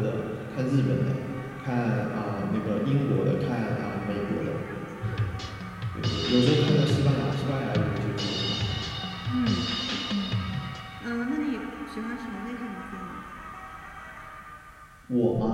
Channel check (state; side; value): identical; both; correlation 1.00